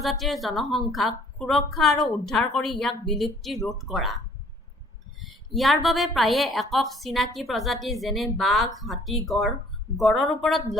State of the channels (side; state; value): both; normal; correlation 0.57